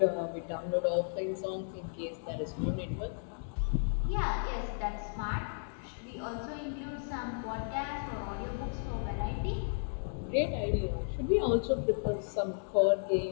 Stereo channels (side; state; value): right; silent; digital silence